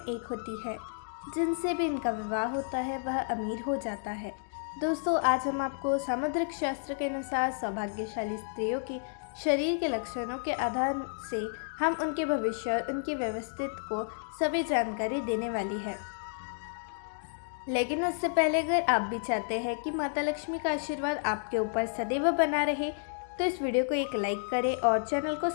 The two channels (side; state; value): right; silent; digital silence